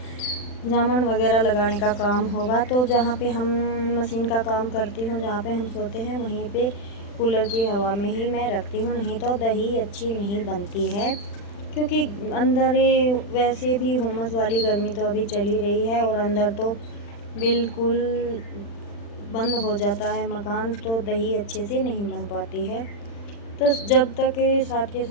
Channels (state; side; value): late; right; 40 ms